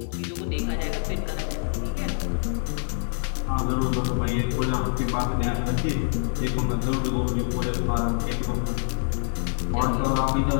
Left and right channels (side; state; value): right; silent; 57 dB below the other